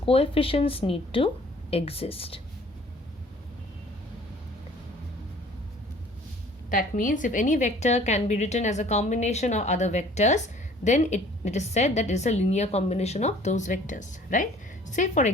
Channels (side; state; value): both; normal; correlation 0.53